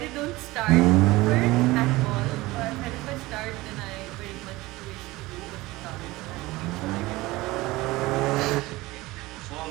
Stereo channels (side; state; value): left; quieter; 19.9 dB